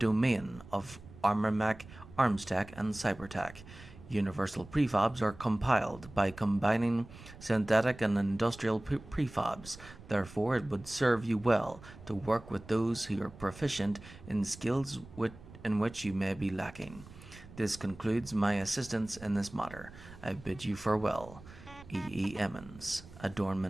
of armormech, armstech, and cybertech. Universal prefabs are compiled by combining synthetic and industrial prefabs. Therefore, it would serve you well to work with those who are proficient in skills in which you may be lacking. This concludes my assistance in this matter. I bid you farewell. E. Emmons,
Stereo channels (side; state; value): right; noise; rumble, 18 dB below the sound